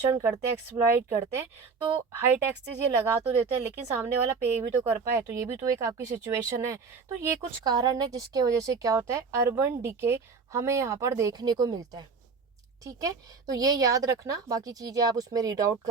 करते हैं, एक्सप्लॉइट करते हैं। तो हाई टैक्सेस ये लगा तो देते हैं, लेकिन सामने वाला पे भी तो कर पाए, तो ये भी तो एक आपकी सिचुएशन है। तो ये कुछ कारण है जिसके वजह से क्या होता है, अर्बन डिके हमें यहाँ पर देखने को मिलता है, ठीक है। तो ये याद रखना, बाकी चीज़ें आप उसमें रीड आउट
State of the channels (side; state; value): left; quieter; 5.0 dB